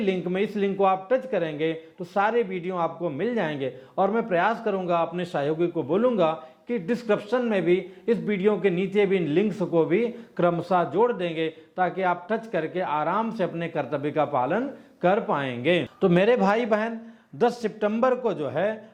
में, इस लिंक को आप टच करेंगे तो सारे वीडियो आपको मिल जाएंगे। और मैं प्रयास करूंगा, अपने सहयोगी को बोलूंगा कि डिस्क्रिप्शन में भी इस वीडियो के नीचे भी इन लिंक्स को भी क्रमशः जोड़ देंगे, ताकि आप टच करके आराम से अपने कर्तव्य का पालन कर पाएंगे। तो मेरे भाई बहन, 10 सितंबर को जो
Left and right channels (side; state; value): both; identical; correlation 1.00